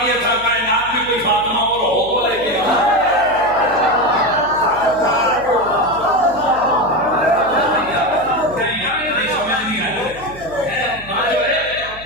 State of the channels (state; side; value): noise; right; hum, 19 dB below the sound